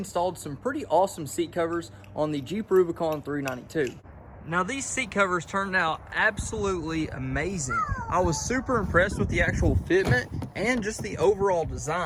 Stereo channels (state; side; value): identical; both; correlation 1.00